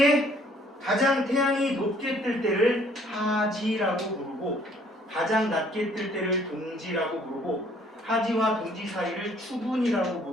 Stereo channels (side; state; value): both; normal; correlation 0.61